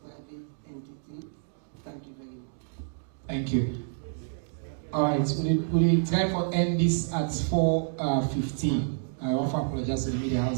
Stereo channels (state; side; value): silent; left; digital silence